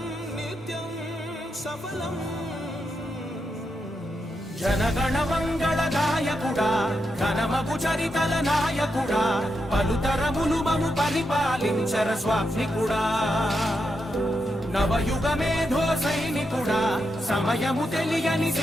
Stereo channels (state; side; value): normal; both; correlation 0.85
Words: నిత్యం సఫలం. జనగణ మంగళ గాయకుడా ఘనమగు చరితల నాయకుడా పలుతరములు మము పరిపాలించర స్వామికుడా. నవయుగ మేధో సైనికుడా సమయము తెలియని